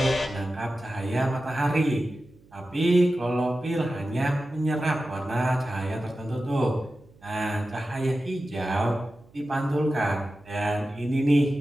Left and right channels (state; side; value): noise; right; hum, 28 dB below the sound